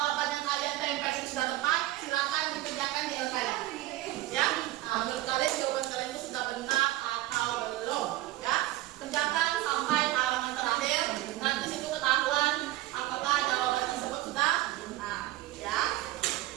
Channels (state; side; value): quieter; left; 16.2 dB